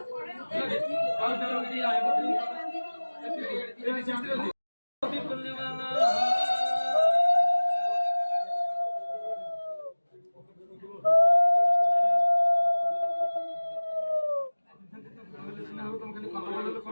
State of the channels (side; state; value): both; inverted; correlation -1.00